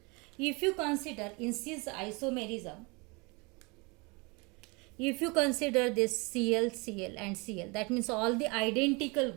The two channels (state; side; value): quieter; left; 28.5 dB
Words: If you consider in cis isomerism, if you consider this Cl, Cl and Cl, that means all the identical